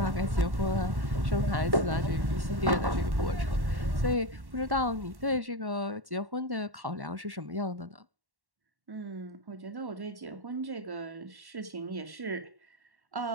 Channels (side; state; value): left; late; 1.1 ms